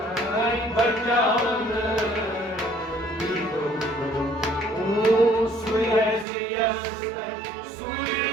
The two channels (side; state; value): left; drops out; at 6.2 s